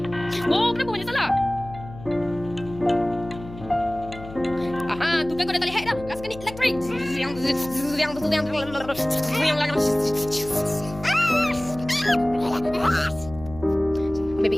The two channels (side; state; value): left; noise; hum, 15 dB below the sound